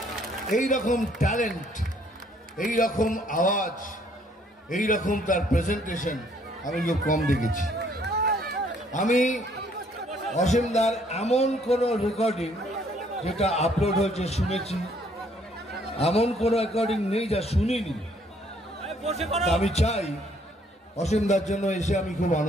এইরকম ট্যালেন্ট, এইরকম আওয়াজ, এইরকম তার প্রেজেন্টেশন আমি খুব কম দেখেছি। আমি অসীমদার এমন কোনো রেকর্ডিং যেটা আপলোড হয়েছে শুনেছি, এমন কোনো রেকর্ডিং নেই যা শুনিনি। আমি চাই অসীমদার জন্য এসে আমি খুব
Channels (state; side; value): normal; both; correlation 0.65